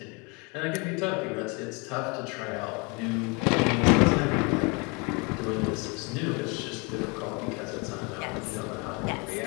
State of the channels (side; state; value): right; quieter; 29.9 dB